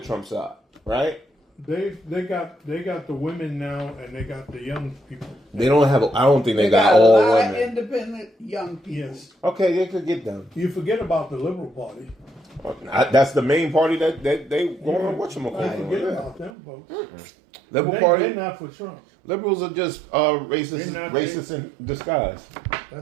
side, right? They got the women now, and they got the young people. They don't have. I don't think they got a all lot women. of independent young people. Yes. Okay, they could get them. You forget about the Liberal Party. That's the main party that they going on. Forget about them folks. Mm-hmm. Liberal Party. They're not for Trump. Liberals are just racist in disguise.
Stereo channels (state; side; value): drops out; left; at 16.5 s